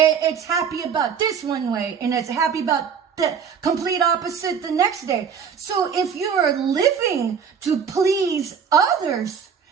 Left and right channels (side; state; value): left; quieter; 7.0 dB